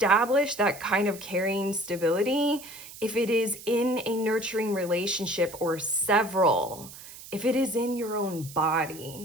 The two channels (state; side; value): noise; right; hiss, 16 dB below the sound